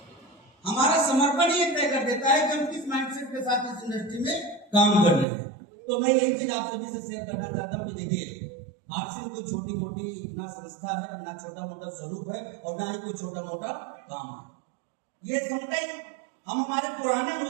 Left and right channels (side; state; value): left; drops out; at 5.2 s